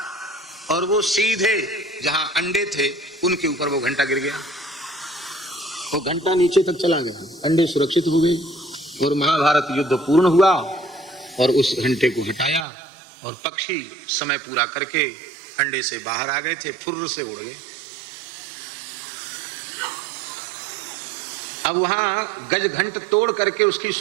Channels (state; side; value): drops out; left; at 12.7 s